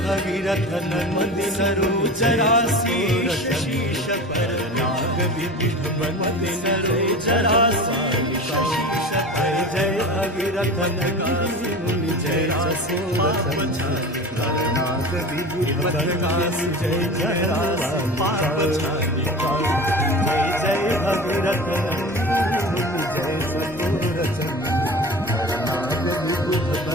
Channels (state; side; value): normal; both; correlation 0.34